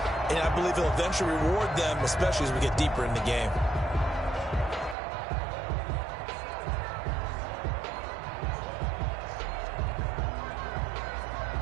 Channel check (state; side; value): drops out; left; at 5.0 s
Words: and I believe he'll eventually reward them, especially as we get deeper in the game.